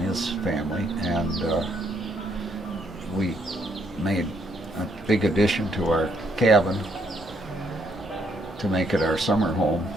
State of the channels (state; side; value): normal; both; correlation 0.71